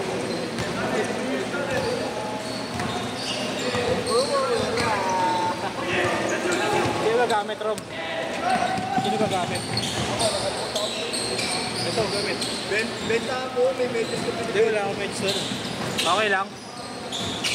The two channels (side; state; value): both; identical; correlation 1.00